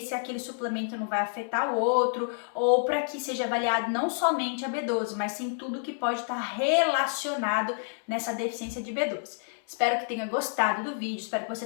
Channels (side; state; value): right; silent; digital silence